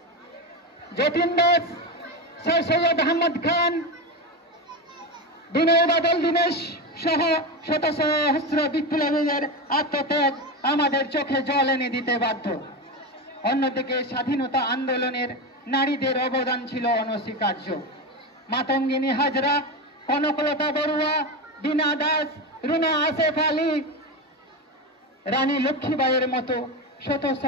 যতীন দাস, স্যার সৈয়দ আহমদ খান, বিনয় বাদল দীনেশ সহ শত সহস্র বিপ্লবীদের আত্মত্যাগ আমাদের চোখে জল এনে দিতে বাধ্য। অন্যদিকে স্বাধীনতা আন্দোলনের নারীদের অবদান ছিল অনস্বীকার্য। মাতঙ্গিনী হাজরা, কনকলতা বড়ুয়া, বীণা দাস, রুনা আসেফ আলী, রানী লক্ষ্মীবাইয়ের মতো শত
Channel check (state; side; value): normal; both; correlation 0.17